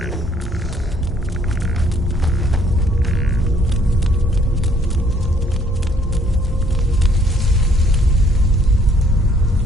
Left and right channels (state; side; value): normal; both; correlation 0.63